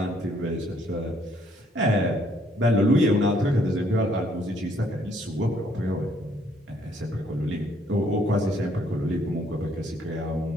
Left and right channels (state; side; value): normal; both; correlation 0.67